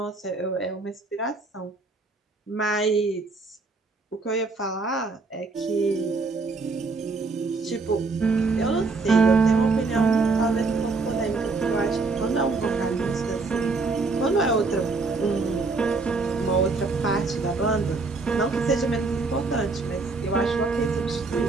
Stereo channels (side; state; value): left; quieter; 3.9 dB